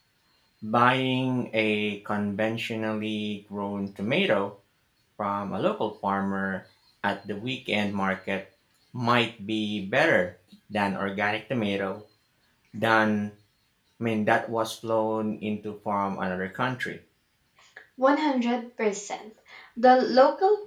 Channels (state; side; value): identical; both; correlation 1.00